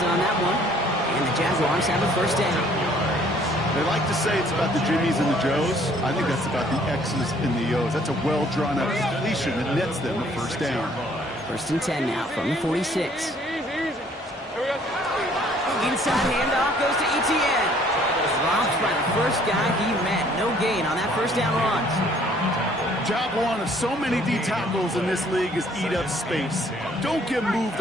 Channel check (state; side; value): normal; both; correlation 0.60